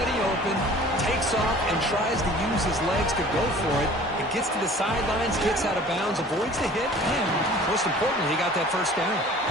open, takes off and tries to use his legs to go for it. It gets to the sidelines, gets out of bounds, avoids the hit, and most importantly, he got that first down.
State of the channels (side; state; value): both; normal; correlation 0.47